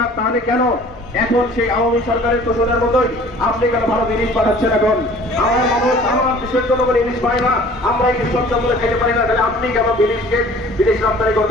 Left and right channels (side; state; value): both; normal; correlation 0.49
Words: তাহলে কেন এখন সেই আওয়ামী সরকারের তোষণের মতোই আপনি কেন ভারত ইলিশ পাঠাচ্ছেন? এখন আমার মানুষ, আমার দেশের জনগণ ইলিশ পায় না, আমরা ইলিশ সচ্ছলভাবে খেতে পারি না, তাহলে আপনি কেন ইলিশকে বিদেশ রপ্তানি